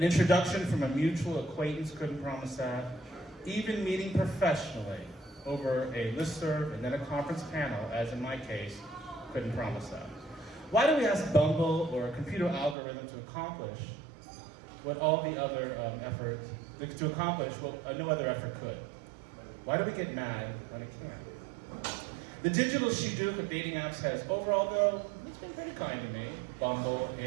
introduction from a mutual acquaintance couldn't promise that. Even meeting professionally over a listserv and then a conference panel, as in my case, couldn't promise that. Why do we ask Bumble or a computer algorithm to accomplish what all the other no other effort could? Why do we get mad when it can't? The digital shidduch of dating apps has overall, though, it's been pretty kind to me. Bumble,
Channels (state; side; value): drops out; left; at 12.8 s